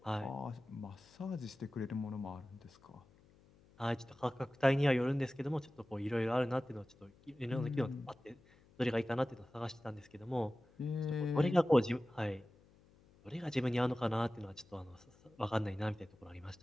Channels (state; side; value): noise; left; hum, 27 dB below the sound